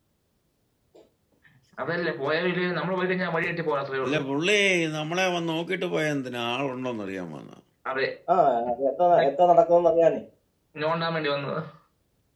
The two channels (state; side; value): identical; both; correlation 1.00